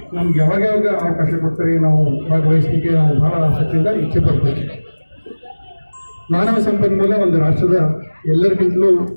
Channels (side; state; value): both; inverted; correlation -1.00